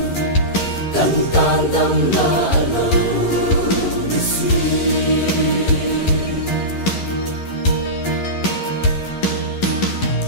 tan tan đầm la lâu đi suy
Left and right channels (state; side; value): late; right; 11 ms